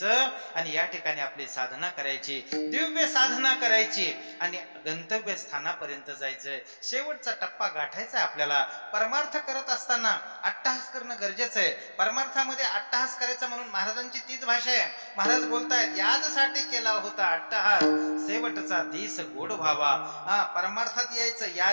आणि या ठिकाणी आपली साधना करायची, दिव्य साधना करायची आणि गंतव्य स्थानापर्यंत जायचंय. शेवटचा टप्पा गाठायचा आपल्याला. परमार्थ करत असताना अट्टहास करणं गरजेचं आहे. परमार्थामध्ये अट्टहास करायचा म्हणून महाराजांची तीच भाषा आहे. महाराज बोलतायत याजसाठी केला होता अट्टहास, शेवटचा दिस गोड व्हावा. परमार्थात यायचं.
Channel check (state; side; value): inverted; both; correlation -1.00